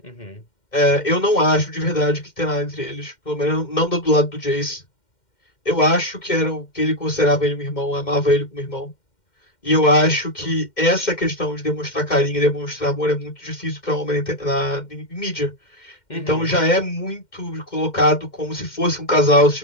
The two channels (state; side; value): late; right; 2.1 ms